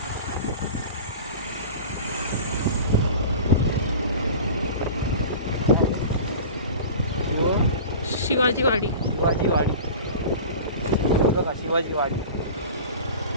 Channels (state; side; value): inverted; both; correlation -0.36